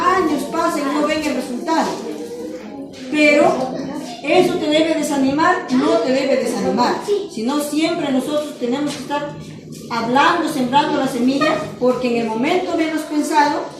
pasan y no ven el resultado. Pero eso te debe desanimar, no te debe desanimar, sino siempre nosotros tenemos que estar hablando, sembrando la semilla, porque en el momento menos pensado,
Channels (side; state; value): both; identical; correlation 1.00